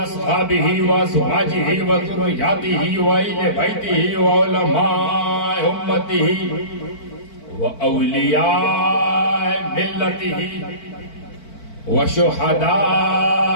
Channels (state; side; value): late; right; 4.5 ms